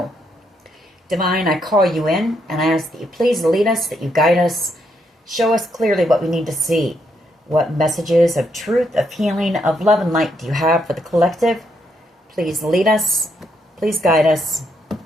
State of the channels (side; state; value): both; normal; correlation 0.76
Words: Divine, I call you in, and I ask that you please lead us, that you guide us. Show us clearly what we need to see. What messages of truth, of healing, of love and light do you have for the collective? Please lead us. Please guide us.